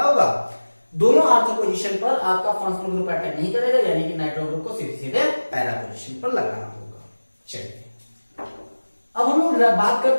होगा, दोनों आर्थो पोजीशन पर आपका फंक्शनल ग्रुप अटैक नहीं करेगा, यानी कि नाइट्रो ग्रुप को सीधे सीधे पैरा पोजीशन पर लगाना होगा। चलिए अब हम लोग बात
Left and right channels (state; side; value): inverted; both; correlation -1.00